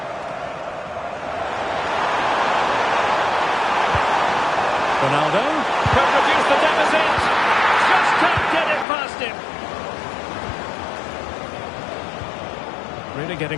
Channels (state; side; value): drops out; right; at 8.8 s